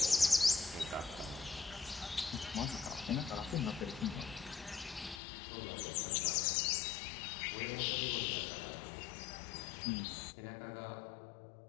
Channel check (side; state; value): right; drops out; at 5.2 s